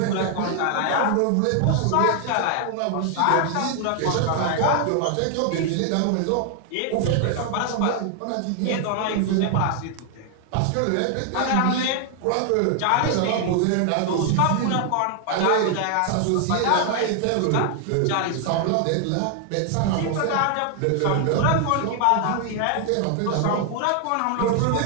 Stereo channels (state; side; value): different; both; correlation 0.00